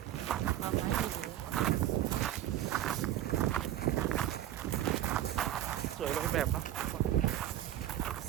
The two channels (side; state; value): left; quieter; 12.4 dB